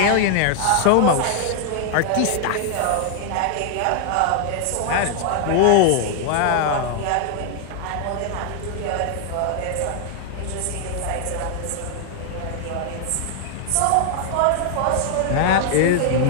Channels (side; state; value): both; different; correlation 0.00